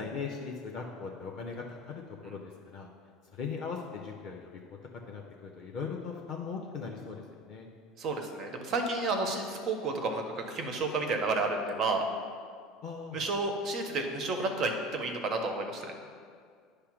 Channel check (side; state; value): both; normal; correlation 0.36